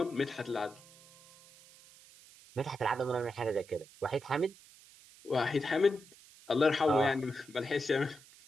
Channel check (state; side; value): noise; right; hiss, 23 dB below the sound